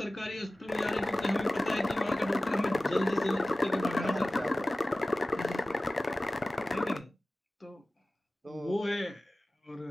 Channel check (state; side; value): normal; both; correlation 0.97